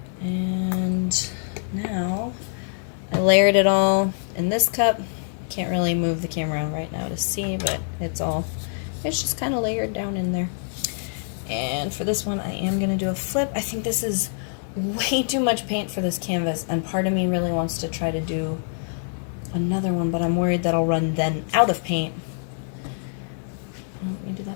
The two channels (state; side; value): silent; right; digital silence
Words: And now I layered it all in this cup. Can't really move the camera right now to see, but it's just kind of layered down in there. And for this one, I am going to do a flip. I think this is way too much paint for this canvas, and part of me really wants to try to do another one, but I'm worried that I'll run then out of paint. Let me do